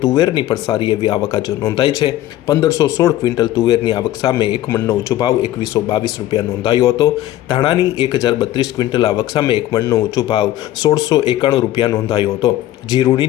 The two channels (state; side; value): quieter; right; 14.1 dB